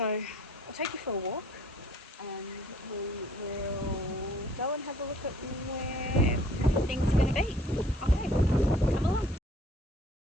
I'll take you for a walk, and we will go and have a look at where everything's going to be. Okay, come along.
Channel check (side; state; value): both; normal; correlation 0.57